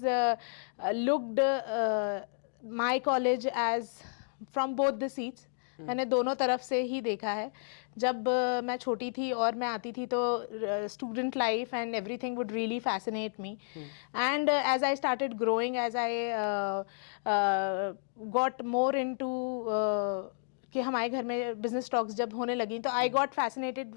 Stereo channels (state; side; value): silent; right; digital silence